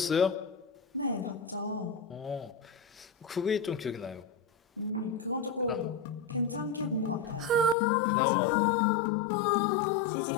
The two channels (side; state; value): right; drops out; at 7.8 s